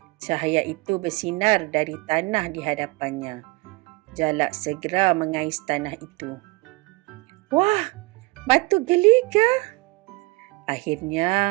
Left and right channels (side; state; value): left; quieter; 25.4 dB